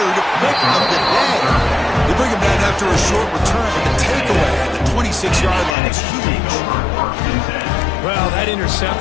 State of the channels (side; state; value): right; drops out; at 5.8 s